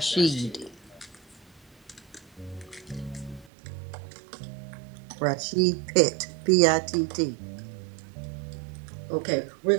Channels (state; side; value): drops out; left; at 3.5 s